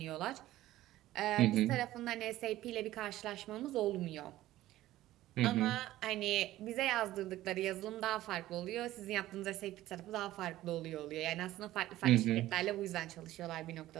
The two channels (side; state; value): left; quieter; 15.2 dB